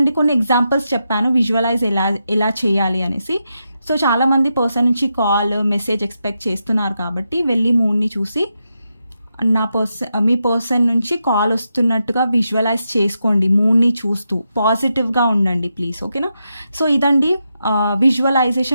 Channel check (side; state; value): both; inverted; correlation -0.86